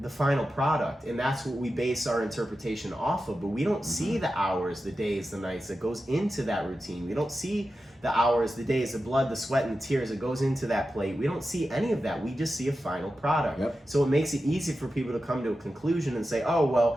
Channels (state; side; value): normal; both; correlation 0.92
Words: the final product and that's what we base our interpretation off of. But we don't see the hours, the days, the nights that goes into that routine. We don't see the hours, the days, the blood, the sweat, and the tears that goes into that plate. We don't see any of that. We just see a final product. Yep. So it makes it easy for people to come to a conclusion and say, oh,